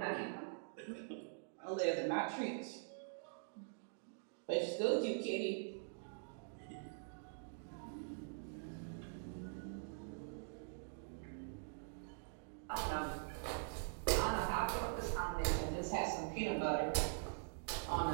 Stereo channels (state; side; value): silent; left; digital silence